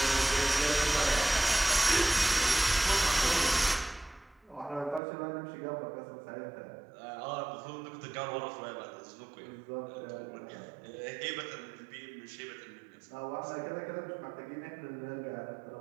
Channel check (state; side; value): drops out; left; at 5.0 s